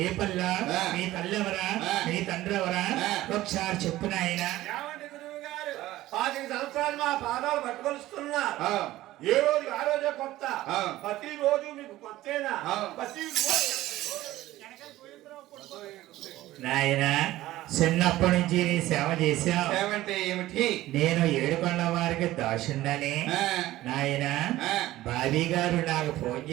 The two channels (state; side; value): quieter; left; 15.9 dB